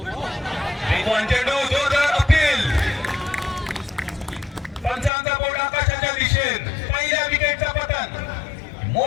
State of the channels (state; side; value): drops out; right; at 5.1 s